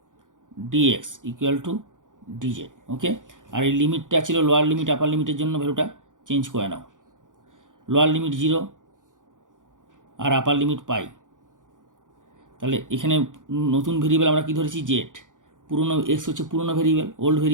dx equal to dz. Okay, আর এই লিমিটটা ছিল লোয়ার লিমিট আপার লিমিটের জন্য ভ্যালুটা চেঞ্জ করে নাও, লোয়ার লিমিট 0 আর আপার লিমিট পাই। তাহলে এখানে নতুন ভেরিয়েবল আমরা কি ধরেছি, জেড, পুরনো এক্স হচ্ছে পুরনো ভেরিয়েবল, ওল্ড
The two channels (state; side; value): late; left; 0.88 ms